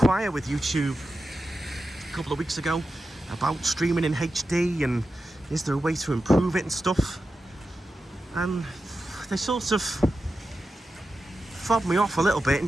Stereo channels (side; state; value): both; normal; correlation 0.91